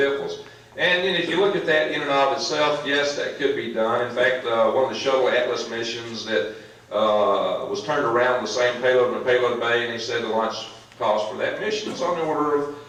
And then if you look at that in and of itself, yes, that could be done. In fact, one of the shuttle Atlas missions that was turned around the same payload in the payload bay, and he said the launch cost for that mission is on the order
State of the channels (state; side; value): identical; both; correlation 1.00